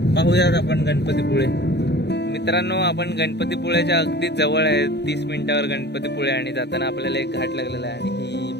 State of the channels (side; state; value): right; late; 0.49 ms